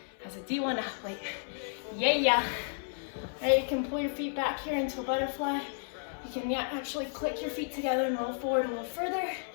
as a D1 athlete. Yeah. All right, you can pull your feet back here into a butterfly. You can actually click your feet together and roll forward a little further.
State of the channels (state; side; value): silent; right; 56 dB below the other